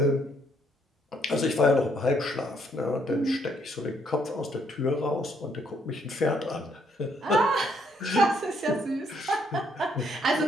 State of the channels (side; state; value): both; normal; correlation 0.70